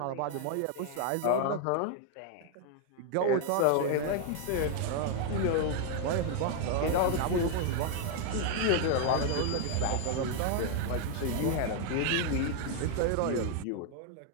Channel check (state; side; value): different; both; correlation 0.01